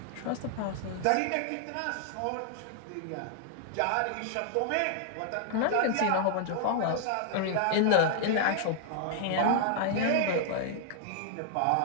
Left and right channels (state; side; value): different; both; correlation -0.01